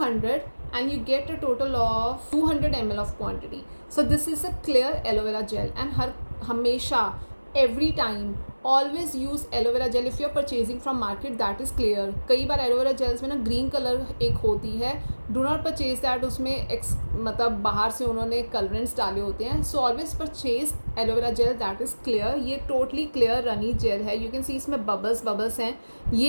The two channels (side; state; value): both; inverted; correlation -1.00